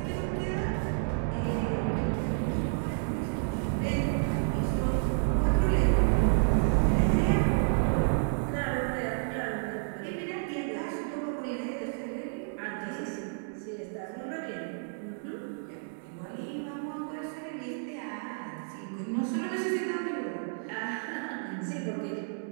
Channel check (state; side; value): silent; left; digital silence